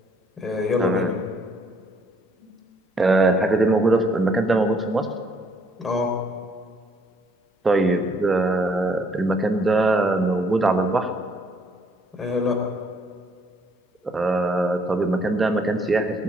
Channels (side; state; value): both; normal; correlation 0.66